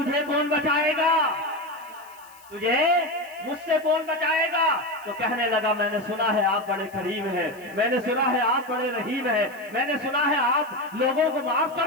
کون بچائے گا، تجھے مجھ سے کون بچائے گا؟ تو کہنے لگا میں نے سنا ہے آپ بڑے کریم ہیں، میں نے سنا ہے آپ بڑے رحیم ہیں، میں نے سنا ہے آپ لوگوں کو معاف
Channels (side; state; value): left; noise; hiss, 25 dB below the sound